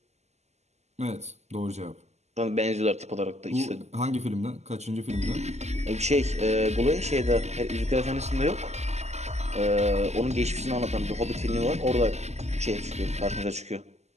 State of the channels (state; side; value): late; left; 0.33 ms